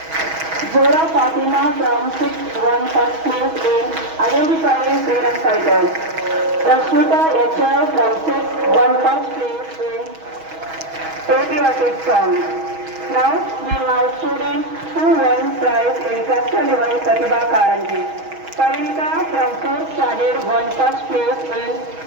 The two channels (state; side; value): late; left; 6.2 ms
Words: Zora Fatima from 6th won first place in identifying freedom fighters. Rashmita HR from 6th won first place in patriotic song. Now we have students who won prize in cluster level Pratibha Karanji. Parinita from 4th standard won first place in